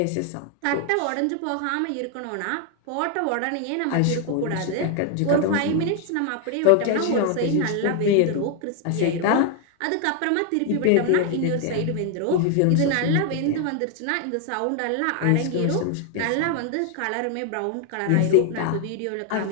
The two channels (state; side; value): different; both; correlation 0.00